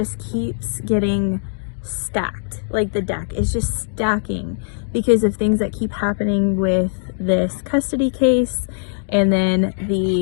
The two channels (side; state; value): right; silent; digital silence